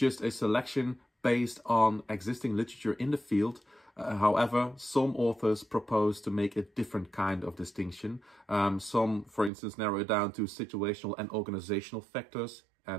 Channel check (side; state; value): left; drops out; at 9.5 s